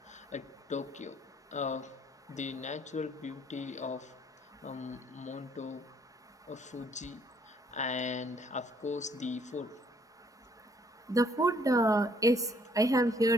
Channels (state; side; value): normal; both; correlation 0.65